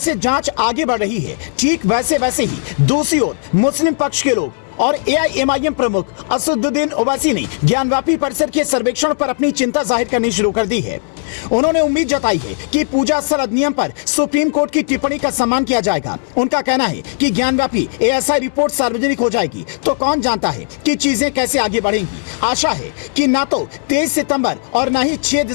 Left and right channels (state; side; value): silent; right; 68 dB below the other